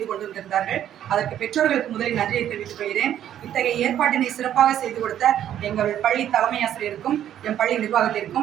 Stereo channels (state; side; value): quieter; left; 10.9 dB